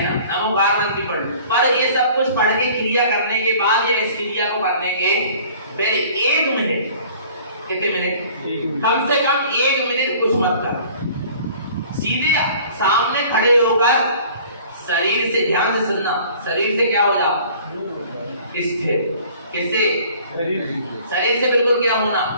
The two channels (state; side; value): inverted; both; correlation -0.50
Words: नमोकार मंत्र भी पढ़। पर ये सब कुछ पढ़ के क्रिया करने के बाद या इस क्रिया को करने के पहले 1 मिनट, कितने मिनट, कम से कम 1 मिनट कुछ मत कर, सीधे सामने खड़े होकर शरीर से, ध्यान से सुनना, शरीर से क्या हो जाओ, स्थिर। किससे, शरीर से बिल्कुल क्या होना,